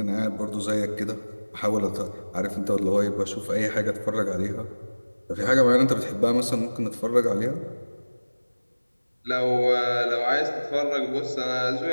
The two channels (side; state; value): both; inverted; correlation -1.00